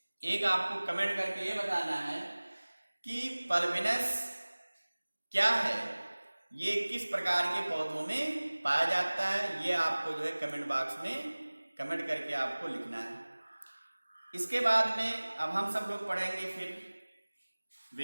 एक आपको कमेंट करके ये बताना है कि पल्बिनस क्या है, ये किस प्रकार के पौधों में पाया जाता है, ये आपको जो है कमेंट बॉक्स में कमेंट करके आपको लिखना है। इसके बाद में अब हम सब लोग पढ़ेंगे फिर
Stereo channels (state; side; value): inverted; both; correlation -1.00